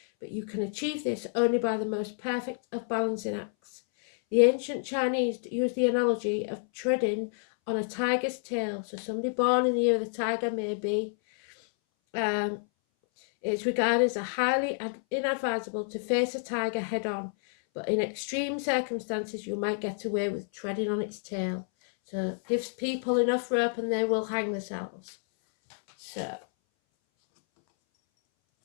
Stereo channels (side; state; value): right; silent; 59 dB below the other